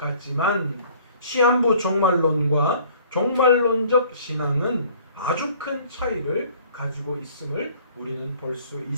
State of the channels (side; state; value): both; inverted; correlation -0.54